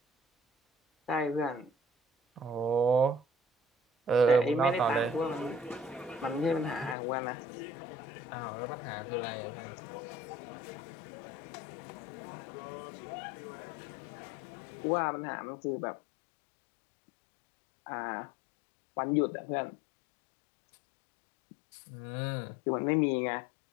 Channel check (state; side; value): drops out; right; at 7.0 s